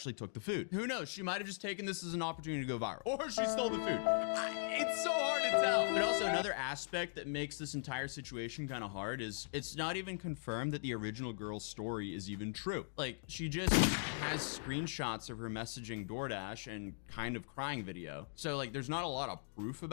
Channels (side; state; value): right; silent; digital silence